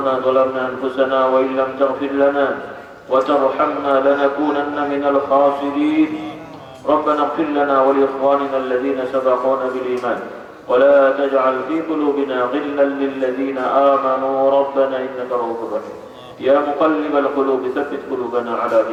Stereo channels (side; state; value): both; identical; correlation 1.00